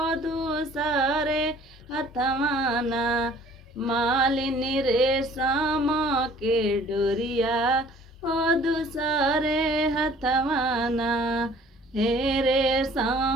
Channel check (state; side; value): normal; both; correlation 0.53